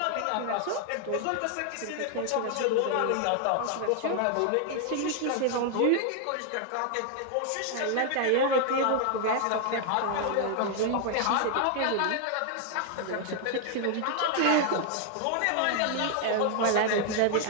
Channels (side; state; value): both; different; correlation 0.00